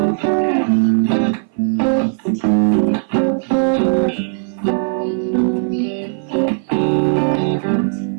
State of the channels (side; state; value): left; silent; 58 dB below the other